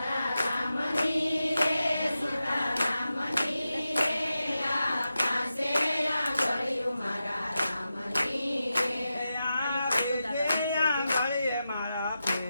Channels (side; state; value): both; inverted; correlation -0.90